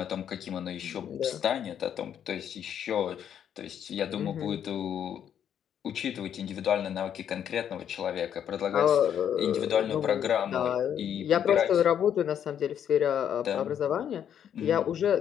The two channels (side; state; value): right; quieter; 9.2 dB